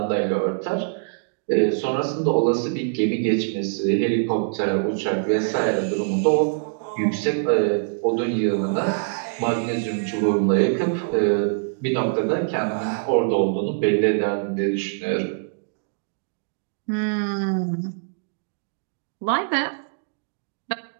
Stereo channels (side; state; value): left; silent; digital silence